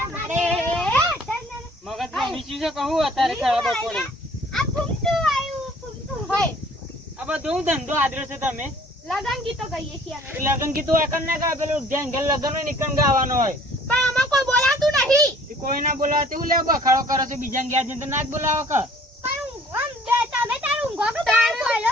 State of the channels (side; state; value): both; normal; correlation 0.54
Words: બપોરે આ ફૂમતું આવ્યું ફૂમતું હોય આ બધું ધંધો આદરે છે તમે લગન ગીતો ગાઈએ છીએ અમે. લગન કીધું એકન ના ગાય પેલું જ્યાં ઘેર લગન હોય નીકળ ગાવાનો હોય પણ આમાં કોઈ બોલાતું નહીં. એ કોઈ ના બોલાવે તેવું લે બખાડો કરો છો બીજા ગયા છે તો ના જ બોલાવો કે પણ આમ બે તમે તારું ઊંઘો કે તારું બોલો